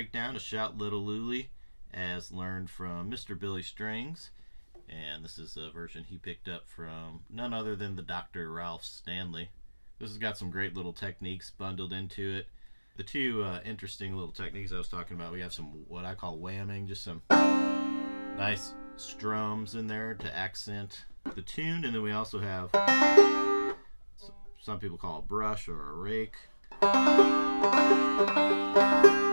of Shout Little Lulie as learned from Mr. Billy Strings. And this is a version he picked up from none other than the Dr. Ralph Stanley. This has got some great little techniques bundled into it. The two interesting little techniques I was talking about, we have some what I call whamming, just some nice strums in there to accent the tune, and then we also have some people call a brush or a rake.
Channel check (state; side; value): inverted; both; correlation -1.00